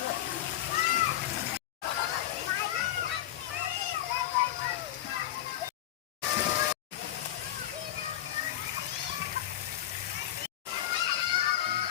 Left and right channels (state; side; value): quieter; right; 12.9 dB